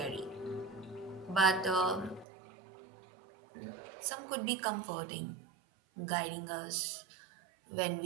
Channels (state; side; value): drops out; left; at 2.2 s